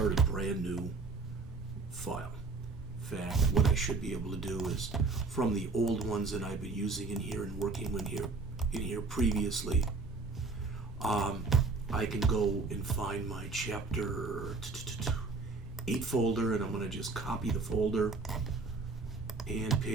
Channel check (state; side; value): quieter; left; 3.9 dB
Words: a brand new file. In fact, what I should be able to do is from the old ones that I've been using in here and working in here previously, I can go and find my chapter 8 folder, and I'm going to just copy the folder and